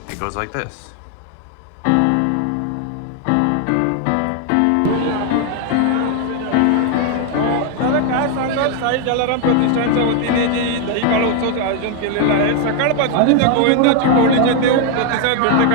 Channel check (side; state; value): both; different; correlation 0.01